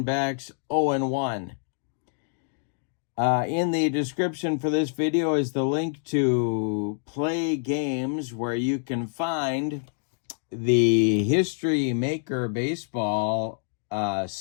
0-1. In the description for this video is the link to Play Games, where you can find the History Maker Baseball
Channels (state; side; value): silent; right; digital silence